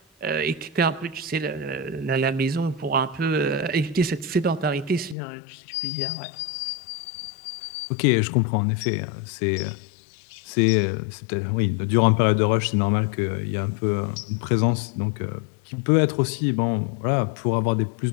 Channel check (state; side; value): drops out; right; at 5.2 s